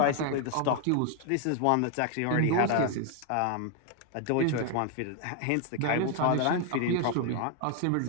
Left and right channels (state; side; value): different; both; correlation 0.01